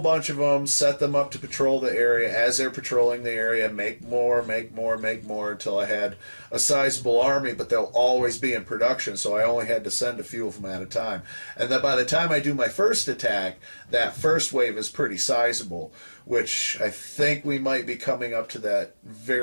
bunch of them, set them up to patrol the area. As they're patrolling the area, make more, make more, make more, until I had a sizable army, but they'll always be in production, so I only had to send a few of them at a time. And then by the time I do my first attack, that first wave is pretty sizable, which I think we might be coming up to that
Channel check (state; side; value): inverted; both; correlation -1.00